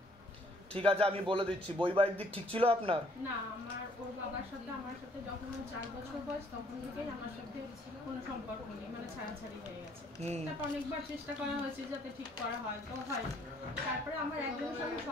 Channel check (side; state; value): both; normal; correlation 0.63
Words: ঠিক আছে, আমি বলে দিচ্ছি। বৈবাহিক দিক ঠিক ছিল আপনার? না, আমার ওর বাবার সাথে আমার সাথে যখন 4 বছর বয়স তখন থেকেই আমার সাথে কোনো সম্পর্ক নেই, মানে ছাড়াছাড়ি হয়ে গেছে। তারপর অনেকবার চেষ্টা করা হয়েছে যাতে ঠিক করা হয়, তো হয়। তারপরে আমার একজনের সঙ্গে